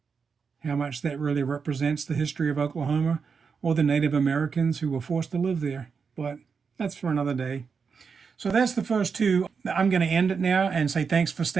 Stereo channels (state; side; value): quieter; left; 5.7 dB